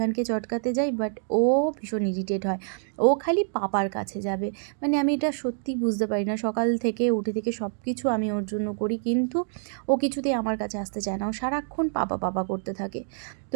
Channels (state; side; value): silent; left; digital silence